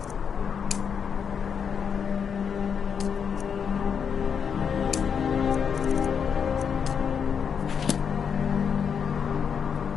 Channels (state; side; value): quieter; right; 7.0 dB